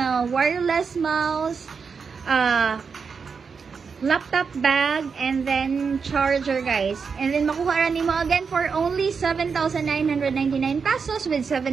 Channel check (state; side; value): quieter; left; 5.6 dB